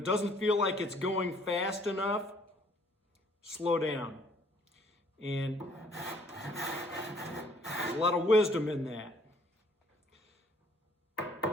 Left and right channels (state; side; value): normal; both; correlation 0.61